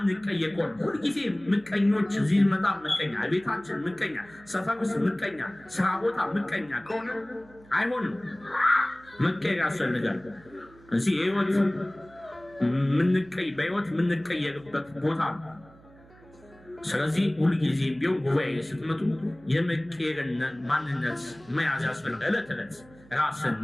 ከሆነ ሁልጊዜ ምቀኞች፣ እዚህ ስንመጣ ምቀኛ፣ ቤታችን ምቀኛ፣ ሰፈር ውስጥ ምቀኛ፣ ስራ ቦታ ምቀኛ ከሆነ አይሆንም። መቀየር ያስፈልጋል። እዚህ በህይወት የምንቀየርበት ቦታ ነው። ስለዚህ ሁልጊዜ ቢሆን ጉባኤ ስትመጡ የመቀየርን ማንነት መያዝ ያስፈልጋል። ዕለት ዕለት ራስን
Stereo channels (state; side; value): noise; right; hum, 25 dB below the sound